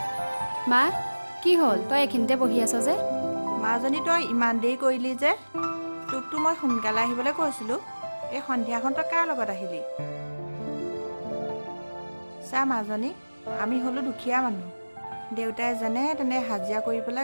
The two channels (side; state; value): both; inverted; correlation -1.00